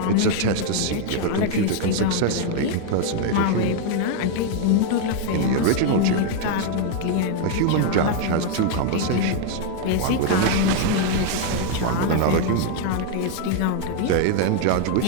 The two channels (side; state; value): both; different; correlation 0.00